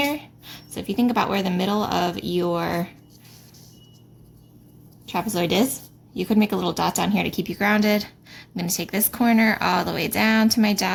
So if you think about where the middle of your trapezoid is, you could make a little dot down here to keep you grounded. I'm going to take this corner all the way down to my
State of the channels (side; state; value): both; identical; correlation 1.00